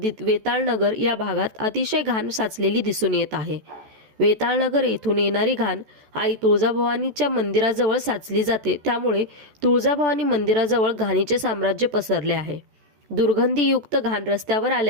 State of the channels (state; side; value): late; left; 14 ms